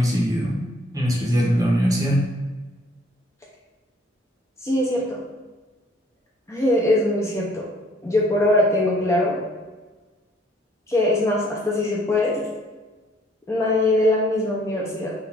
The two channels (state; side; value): normal; both; correlation 0.61